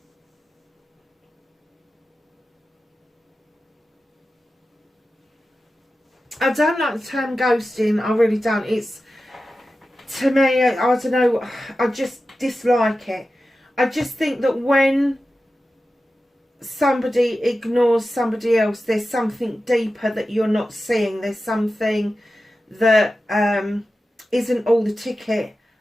I don't like the term ghosting. I really don't. It's, to me, I don't know, I just dislike it. I just think that when somebody ignores somebody else, there's something deeper that you're not seeing. There's something that isn't all the ticket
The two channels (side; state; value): both; normal; correlation 0.93